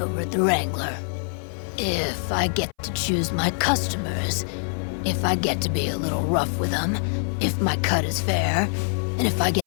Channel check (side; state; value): right; silent; 60 dB below the other